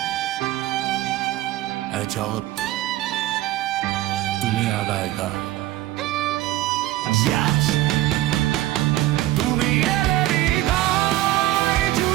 জগৎ তুমি আগায় গান। তুমি এলে হৃদয়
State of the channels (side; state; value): left; quieter; 15.8 dB